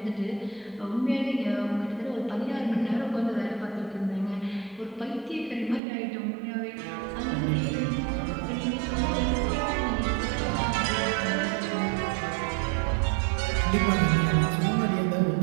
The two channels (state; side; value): drops out; left; at 5.8 s